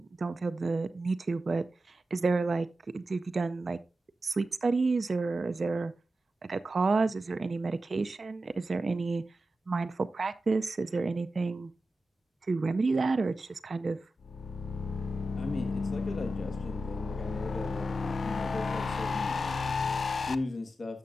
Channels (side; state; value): both; normal; correlation 0.91